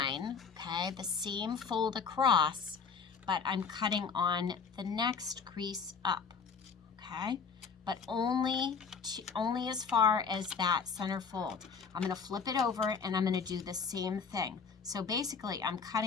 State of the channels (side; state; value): right; quieter; 5.8 dB